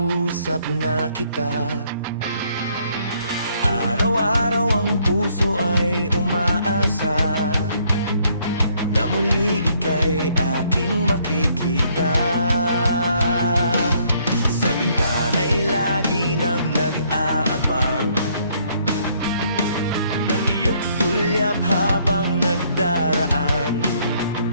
na kita. Araw-araw ang puso ay umaasa na muli ika'y aking makikita. Sa bintana'y lagi nang nag-aabang ng iyong sulyap habang nagdaraan.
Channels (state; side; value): inverted; both; correlation -0.67